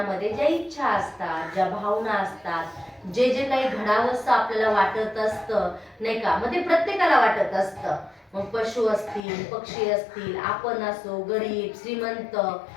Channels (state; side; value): drops out; right; at 9.2 s